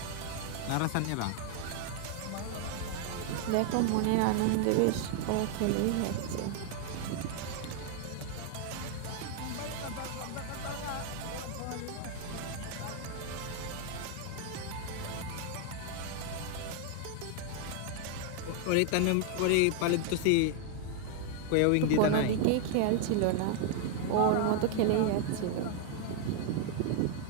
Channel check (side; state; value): both; different; correlation 0.00